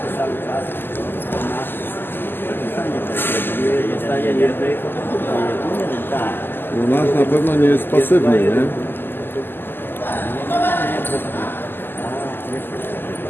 cały czas zostaje jednej, tak. No nasz na pewno nie jest pasywny, nie?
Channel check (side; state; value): right; late; 0.096 ms